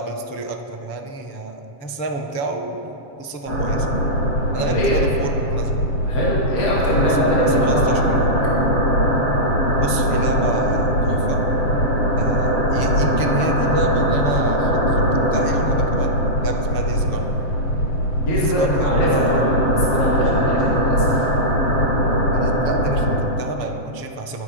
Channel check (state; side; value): late; right; 7.5 ms